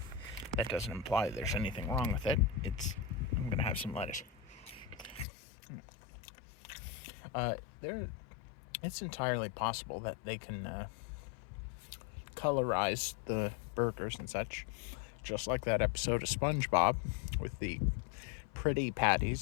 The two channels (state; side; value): drops out; right; at 5.2 s